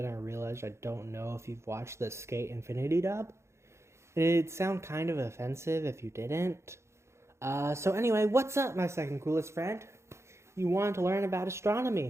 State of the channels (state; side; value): late; left; 0.13 ms